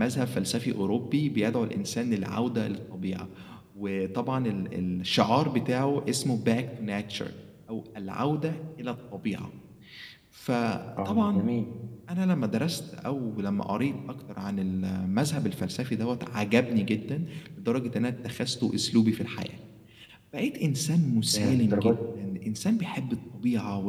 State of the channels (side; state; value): both; identical; correlation 1.00